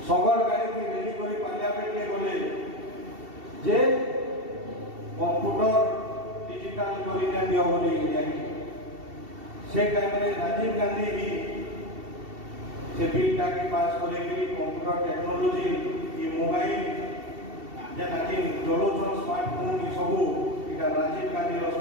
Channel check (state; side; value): late; left; 2.7 ms